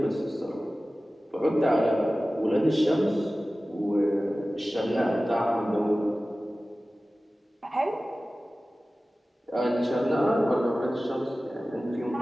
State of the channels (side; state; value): both; normal; correlation 0.96